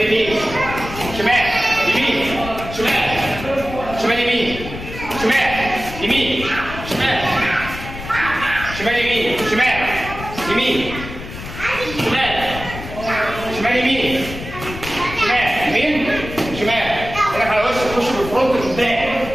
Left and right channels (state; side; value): noise; left; rumble, 11 dB below the sound